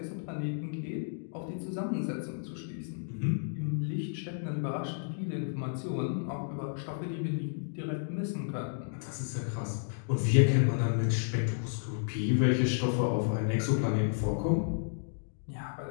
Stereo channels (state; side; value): silent; right; digital silence